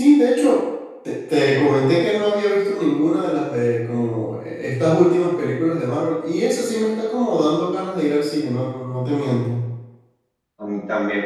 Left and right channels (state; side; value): identical; both; correlation 1.00